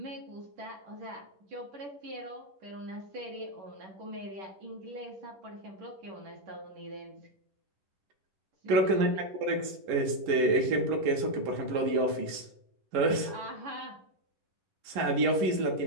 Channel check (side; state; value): left; late; 10 ms